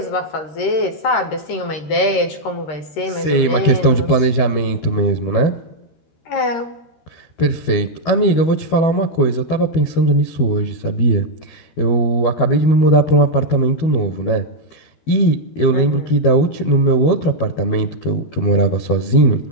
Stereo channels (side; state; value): right; late; 13 ms